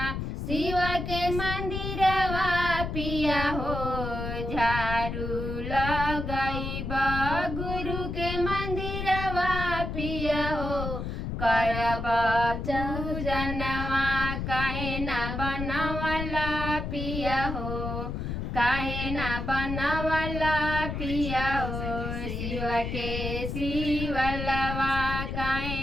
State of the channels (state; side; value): noise; left; rumble, 4 dB below the sound